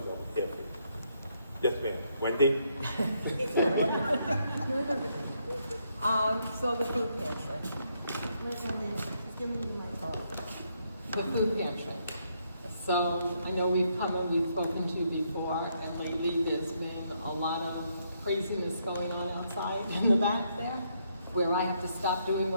I'm here for you. Yes, ma'am. Wendy? So the food pantry. The food pantry. So I know we've spoken to before, and lately there's been a lot of craziness going on outside in the back there, where I have to stop doing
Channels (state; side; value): inverted; both; correlation -0.75